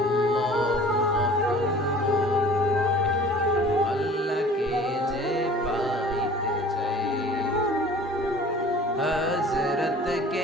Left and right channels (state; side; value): normal; both; correlation 0.47